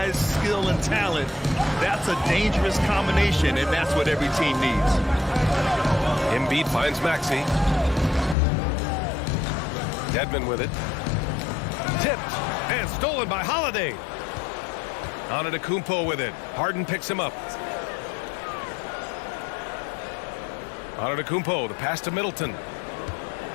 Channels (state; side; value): drops out; right; at 8.3 s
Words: skill, and talent, that's a dangerous combination, and that's what every team needs. Embiid finds Maxey. Dedmon with it. Tipped and stolen by Holiday. Antetokounmpo with it. Harden picks him up. Antetokounmpo, the pass to Middleton.